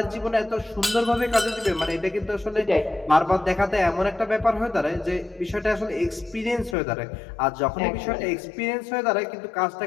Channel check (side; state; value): right; drops out; at 6.8 s